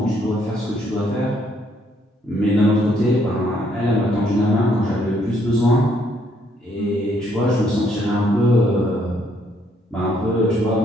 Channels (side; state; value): both; normal; correlation 0.69